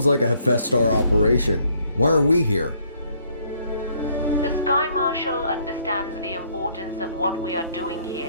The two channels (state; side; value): inverted; both; correlation -0.66